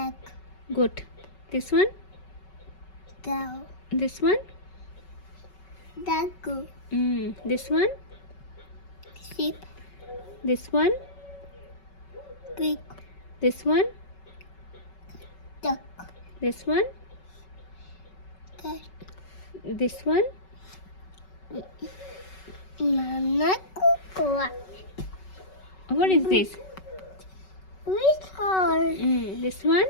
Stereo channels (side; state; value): right; late; 5.3 ms